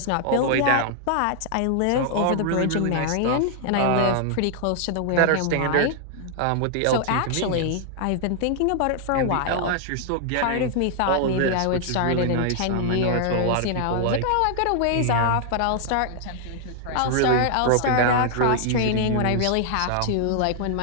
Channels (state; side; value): different; both; correlation 0.00